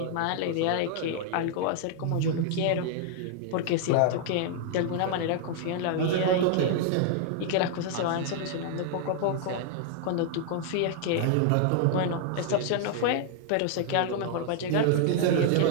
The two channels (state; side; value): different; both; correlation -0.01